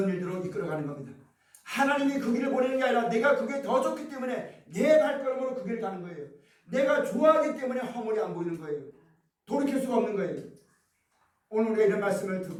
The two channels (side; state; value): both; identical; correlation 1.00